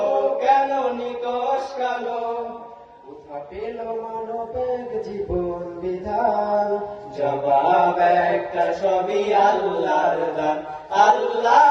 কেন নিকষ কালো। কোথা পেল মানবের জীবন বিধান, জবাব একটা সবই আল্লাহর দান। আল্লাহ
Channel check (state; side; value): identical; both; correlation 1.00